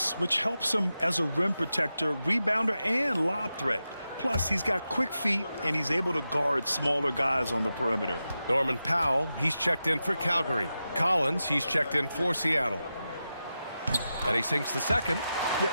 which helps him as a rim protector, rebounder, and lob threat. Plus, he's got quick feet, and he's able to guard smaller guys on the perimeter. Norman Powell, he's checked in for Calgary. Collins, he's checked in for Seattle. And he sinks the second. Yeah,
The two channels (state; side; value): inverted; both; correlation -0.91